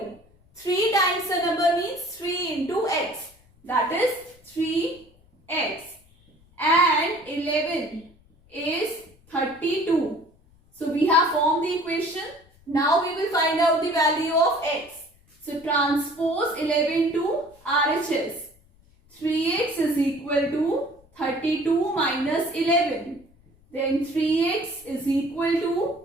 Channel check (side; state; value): left; noise; rumble, 30 dB below the sound